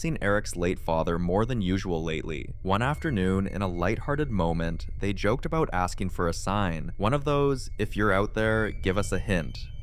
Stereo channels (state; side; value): identical; both; correlation 1.00